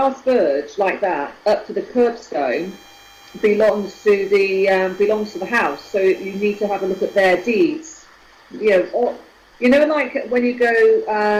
verge like that, up to the curbstone, belongs to the house. So you need to have a look at their deeds. Like when you go,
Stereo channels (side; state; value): both; identical; correlation 1.00